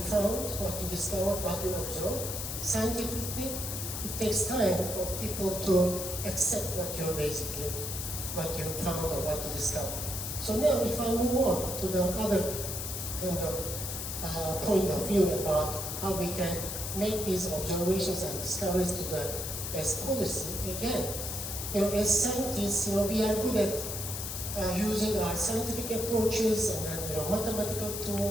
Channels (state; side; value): noise; left; hiss, 5 dB below the sound